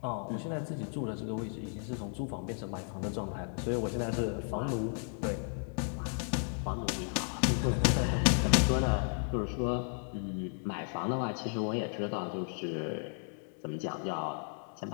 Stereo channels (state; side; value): silent; right; 55 dB below the other